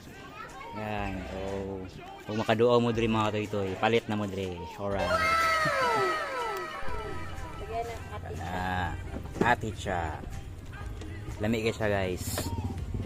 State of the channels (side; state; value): both; identical; correlation 1.00